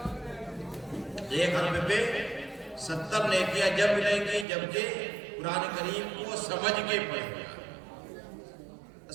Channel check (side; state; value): left; drops out; at 4.5 s